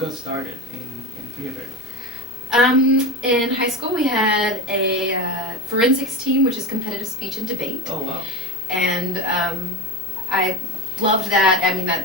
started in theater? In high school, we had a forensics team, which is competitive speech and debate. Oh, wow. And I loved that. I mean,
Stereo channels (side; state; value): both; normal; correlation 0.21